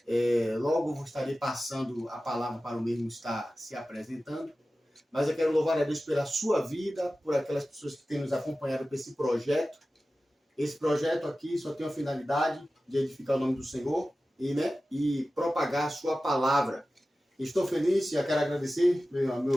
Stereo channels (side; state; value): both; normal; correlation 0.95